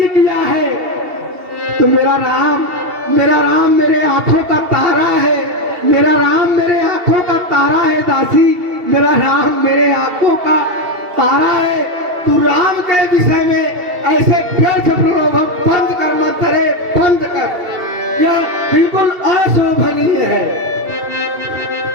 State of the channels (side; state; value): left; late; 2.7 ms